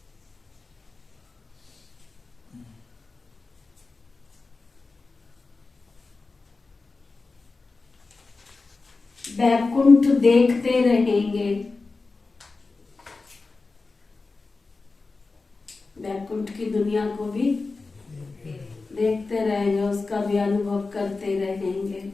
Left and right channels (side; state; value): right; quieter; 3.9 dB